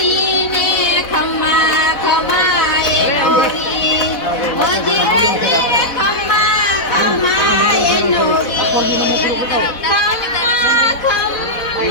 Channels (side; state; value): right; late; 4.1 ms